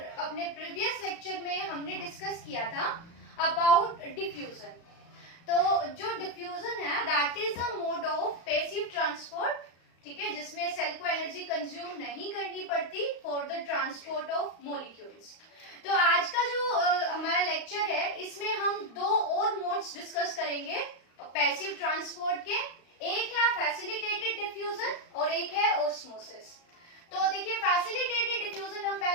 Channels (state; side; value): late; right; 35 ms